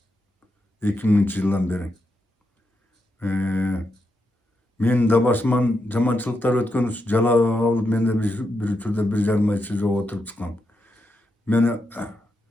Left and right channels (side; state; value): both; normal; correlation 0.84